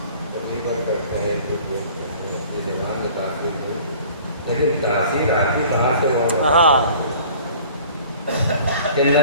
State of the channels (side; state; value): both; inverted; correlation -0.49